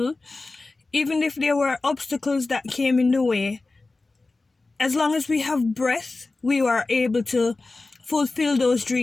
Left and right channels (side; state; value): right; quieter; 3.4 dB